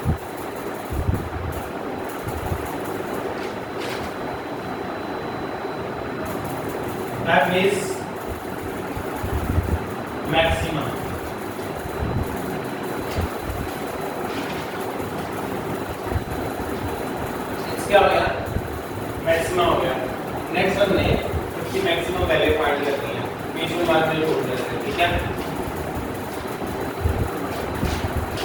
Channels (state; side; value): identical; both; correlation 1.00